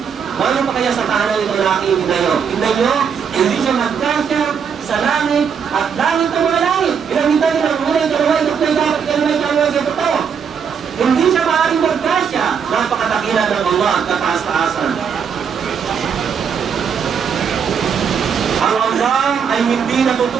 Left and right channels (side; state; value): left; quieter; 7.0 dB